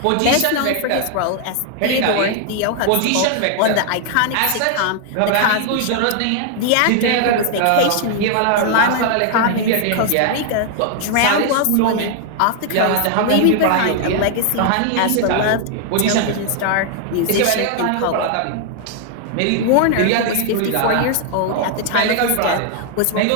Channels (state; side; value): different; both; correlation 0.00